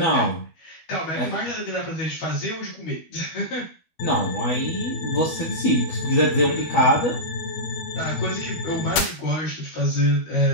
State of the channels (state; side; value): late; right; 12 ms